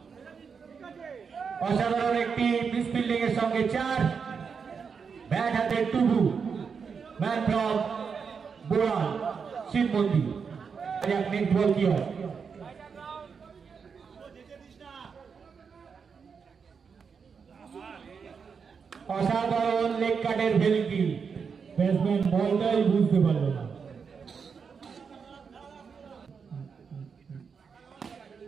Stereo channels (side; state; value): left; quieter; 6.0 dB